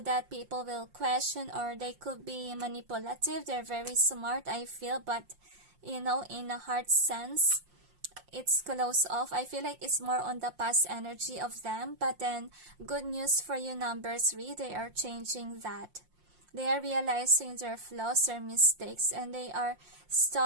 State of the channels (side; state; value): left; late; 5.7 ms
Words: people will question, or they could be manipulative. They're very smart, I feel, but in a heart sense, it's close off. I feel like it's more on the past energy of them. But then, good news for you, number 3, they are changing that. They are realizing their flaws, their mistakes, and they are